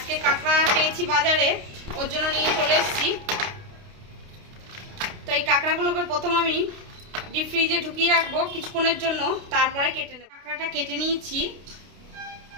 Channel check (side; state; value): left; late; 29 ms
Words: কাঁকড়া পেয়েছি বাজারে, ওর জন্য নিয়ে চলে এসেছি। তো এই কাঁকড়াগুলোকে প্রথম আমি ডিপ ফ্রিজে ঢুকিয়ে রাখবো কিছুক্ষণের জন্য, তারপরে কেটে নেব। কাঁকড়াটা কেটে নিয়েছি।